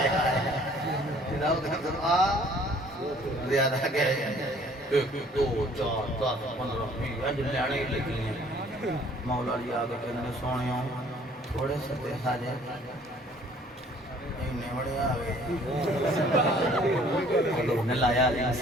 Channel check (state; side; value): normal; both; correlation 0.56